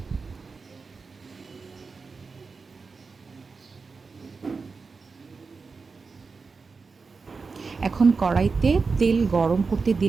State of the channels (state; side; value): quieter; left; 4.6 dB